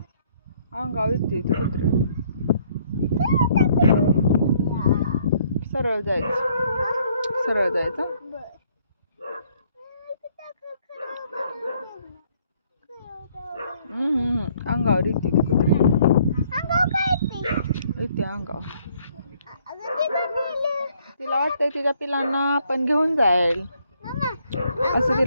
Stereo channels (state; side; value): inverted; both; correlation -0.65